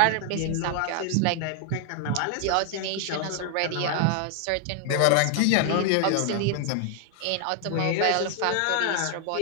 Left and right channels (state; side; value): different; both; correlation 0.00